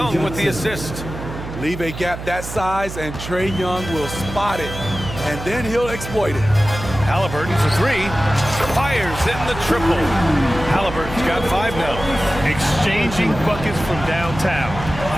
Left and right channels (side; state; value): right; noise; hum, 9 dB below the sound